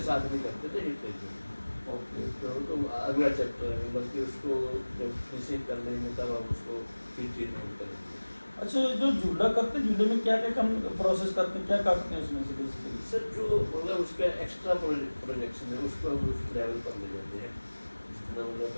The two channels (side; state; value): both; inverted; correlation -1.00